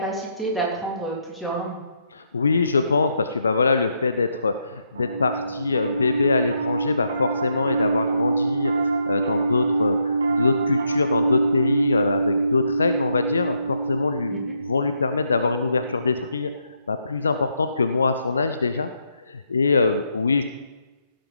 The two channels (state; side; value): inverted; both; correlation -0.79